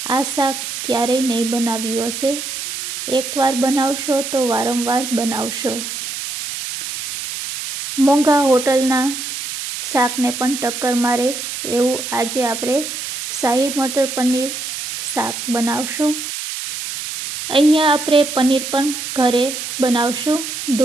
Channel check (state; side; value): noise; right; hiss, 6 dB below the sound